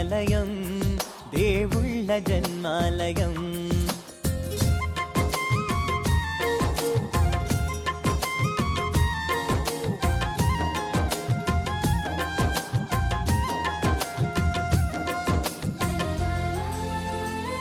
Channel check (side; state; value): both; identical; correlation 1.00